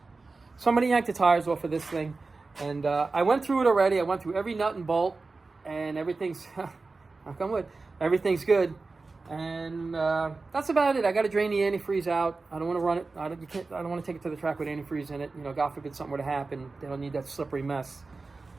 Somebody yanked the tires off of this thing. And I went through it already. I went through every nut and bolt, and everything's, knock on wood, everything's good. And that's about it. I got to drain the antifreeze out. I don't want to run it. I don't want to take it to the track with antifreeze in it. You know, God forbid something were to happen. They don't need that slippery mess.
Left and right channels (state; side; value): quieter; left; 3.8 dB